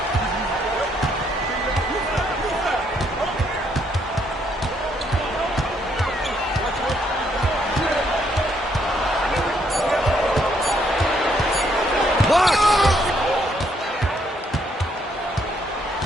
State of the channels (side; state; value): both; normal; correlation 0.71